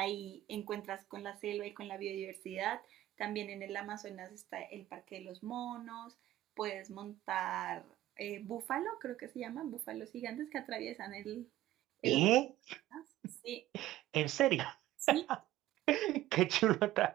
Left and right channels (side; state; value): left; quieter; 14.9 dB